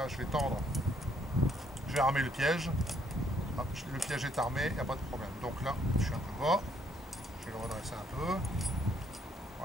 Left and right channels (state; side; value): normal; both; correlation 0.68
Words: je vais tendre, je vais armer le piège. Hop, le piège est armé, il n'y a pas de problème. Donc là, je suis un peu bas, je vais le redresser un peu.